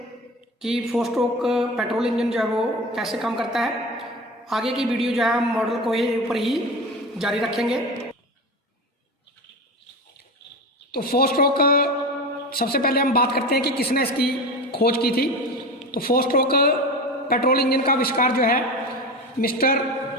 कि 4 स्ट्रोक पेट्रोल इंजन जो है वो कैसे काम करता है। आगे की वीडियो जो है हम मॉडल को ही ऊपर ही जारी रखेंगे। तो 4 स्ट्रोक सबसे पहले हम बात करते हैं कि किसने इसकी खोज की थी। तो 4 स्ट्रोक पेट्रोल इंजन का आविष्कार जो है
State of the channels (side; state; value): both; normal; correlation 0.27